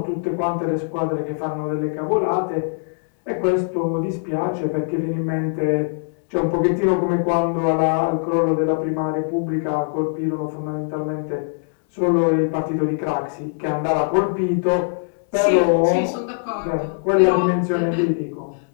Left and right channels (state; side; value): silent; right; 65 dB below the other